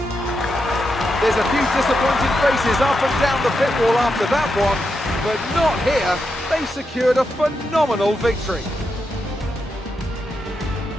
There's a few disappointed faces up and down the pit wall after that one, but not here. They secured a phenomenal victory.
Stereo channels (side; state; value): both; normal; correlation 0.85